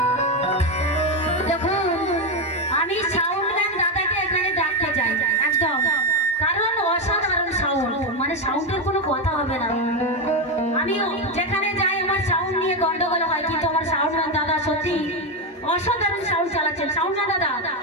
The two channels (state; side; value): normal; both; correlation 0.09